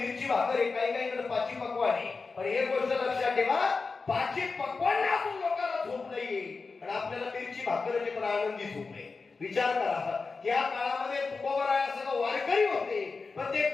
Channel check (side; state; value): right; quieter; 4.3 dB